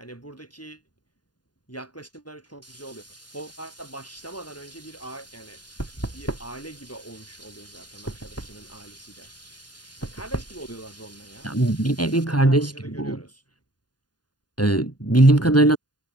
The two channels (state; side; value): late; right; 0.70 ms